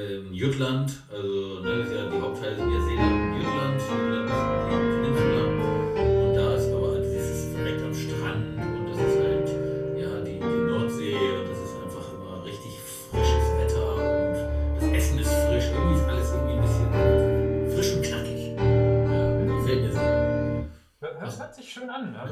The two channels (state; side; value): identical; both; correlation 1.00